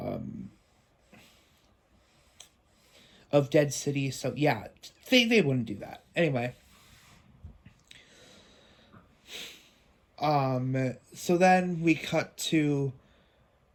Dead City. So yeah, they wouldn't do that anyway. So then we cut to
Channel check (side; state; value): both; identical; correlation 1.00